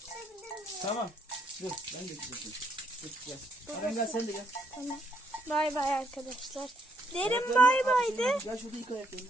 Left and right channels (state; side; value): normal; both; correlation 0.71